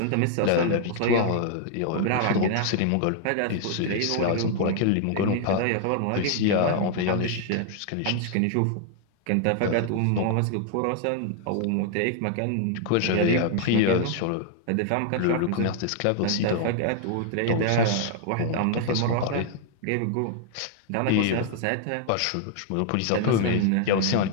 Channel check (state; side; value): different; both; correlation 0.00